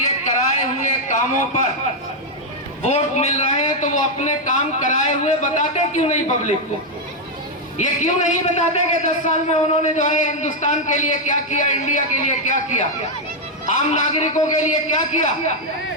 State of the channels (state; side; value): normal; both; correlation 0.00